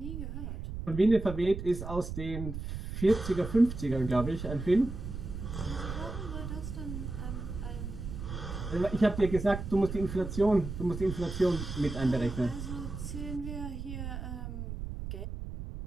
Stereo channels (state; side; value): noise; right; rumble, 7 dB below the sound